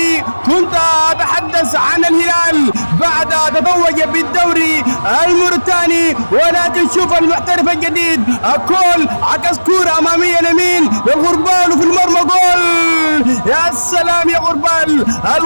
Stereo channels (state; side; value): inverted; both; correlation -1.00